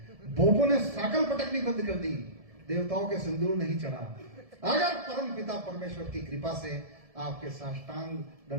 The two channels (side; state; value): left; late; 1.7 ms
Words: बोपो ने साकल पटकनी बंद कर दी, देवताओं के सिंदूर नहीं चढ़ा। अगर परम पिता परमेश्वर की कृपा से आपके साष्टांग